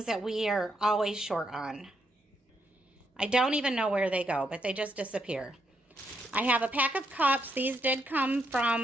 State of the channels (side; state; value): both; normal; correlation 0.78